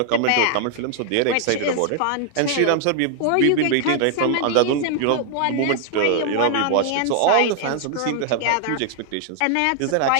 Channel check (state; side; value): different; both; correlation 0.00